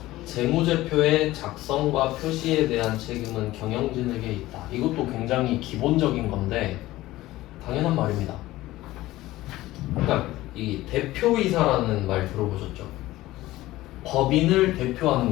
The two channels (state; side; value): quieter; right; 17.0 dB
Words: 재무제표의 작성과 표시에 대한 책임은 경영진에게 있다. 이것도 굉장히 기본적인 건데 당연한 말입니다. 그러니까 이 대표이사라는 말 들어보셨죠? 법인을 대표하는